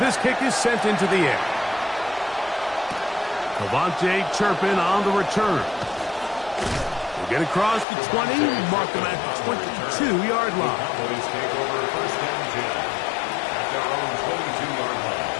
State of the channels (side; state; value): right; drops out; at 7.9 s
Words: kick is sent into the air. Devontae Turpin on the return. We'll get across the 20, mark them at the 22-yard line. Cowboys take over first and 10 at their own 22-yard line.